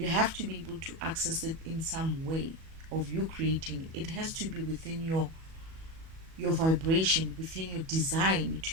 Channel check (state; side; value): late; left; 37 ms